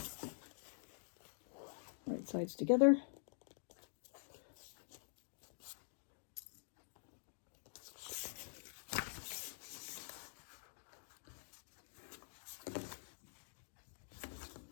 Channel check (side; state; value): right; silent; digital silence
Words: Right sides together.